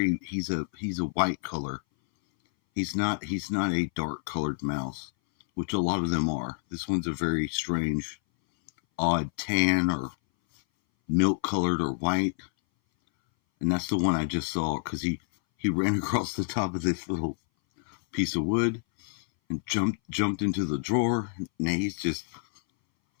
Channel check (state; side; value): silent; right; 59 dB below the other